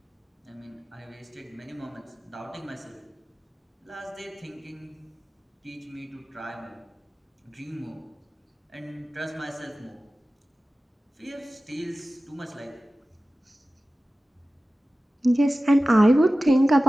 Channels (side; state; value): both; normal; correlation 0.96